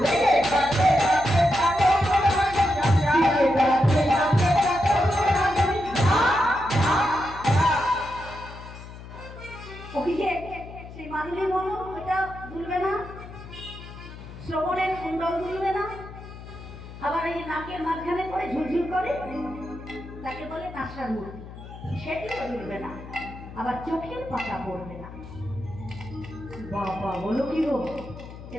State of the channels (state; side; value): noise; left; hum, 14 dB below the sound